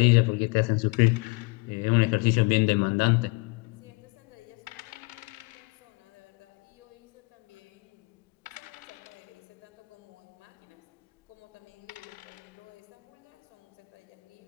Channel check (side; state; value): right; quieter; 29.2 dB